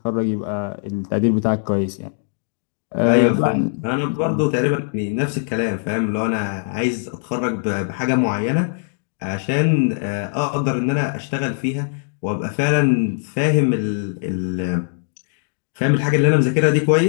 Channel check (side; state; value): right; silent; digital silence